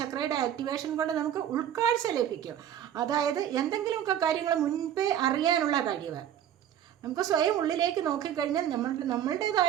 ആക്ടിവേഷൻ കൊണ്ട് നമുക്ക് ഉൾക്കാഴ്ച ലഭിക്കും. അതായത് എന്തെങ്കിലുമൊക്കെ കാര്യങ്ങൾ മുൻപേ അറിയാനുള്ള കഴിവ്. നമുക്ക് സ്വയം ഉള്ളിലേക്ക് നോക്കിക്കഴിഞ്ഞാൽ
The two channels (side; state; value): left; quieter; 10.4 dB